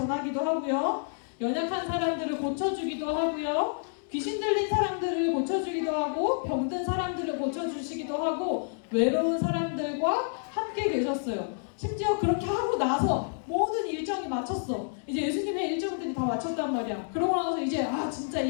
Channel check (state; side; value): silent; right; digital silence